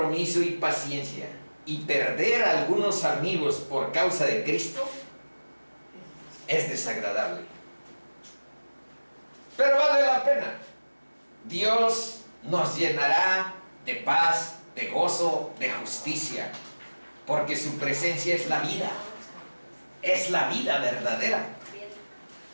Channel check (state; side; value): inverted; both; correlation -1.00